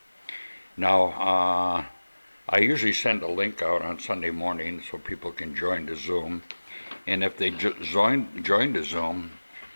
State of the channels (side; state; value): both; inverted; correlation -1.00